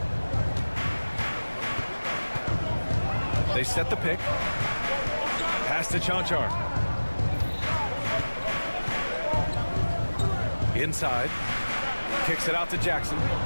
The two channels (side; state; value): both; inverted; correlation -1.00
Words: They set the pick. Pass to Chanchar. Inside. Kicks it out to Jackson.